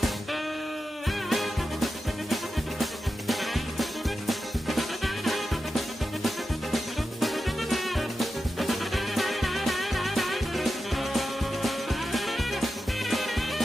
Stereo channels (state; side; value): normal; both; correlation 0.90